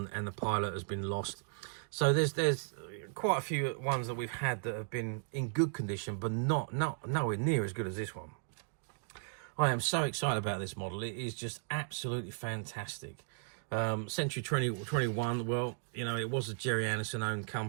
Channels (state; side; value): silent; left; digital silence